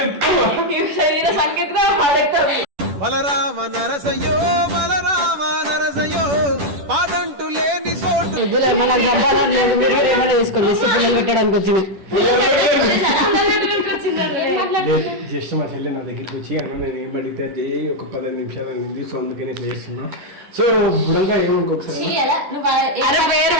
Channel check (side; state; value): left; late; 10 ms